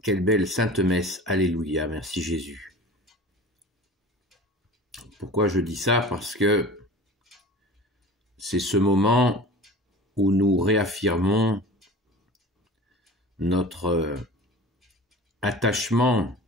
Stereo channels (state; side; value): normal; both; correlation 0.38